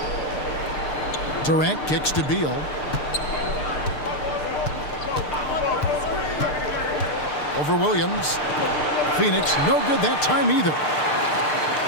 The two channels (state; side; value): late; right; 6.7 ms